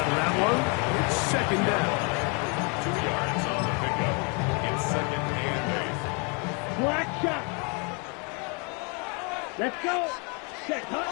of that one. It's second down. 2 yards on the pickup. It's second and 8. Black shot. Let's go. Set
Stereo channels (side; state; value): right; quieter; 34.2 dB